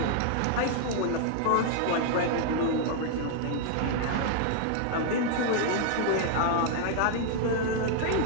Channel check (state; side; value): different; both; correlation 0.00